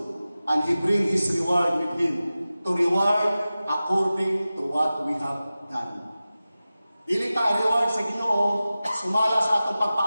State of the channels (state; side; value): inverted; both; correlation -0.96